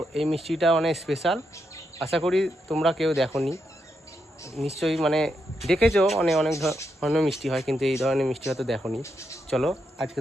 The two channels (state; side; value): normal; both; correlation 0.82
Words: এই মিষ্টিটা অনেক স্পেশাল, আশা করি তোমরা কেউ দেখোনি, নিশ্চয়ই মানে দেখেছো। অনেক ধরনের মিষ্টি হয়, কিন্তু এই ধরনের মিষ্টি হয়তো দেখোনি। চলো আজকে